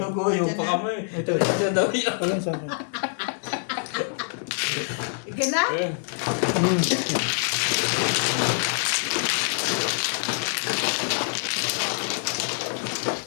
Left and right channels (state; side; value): silent; right; digital silence